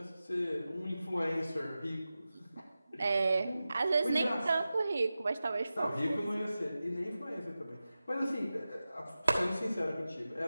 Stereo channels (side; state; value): both; inverted; correlation -0.94